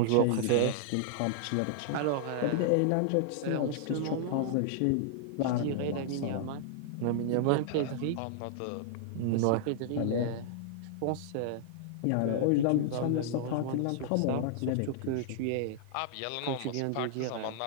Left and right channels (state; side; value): different; both; correlation -0.01